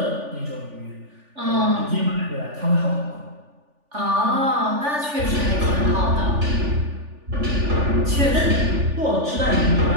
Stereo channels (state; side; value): late; left; 3.4 ms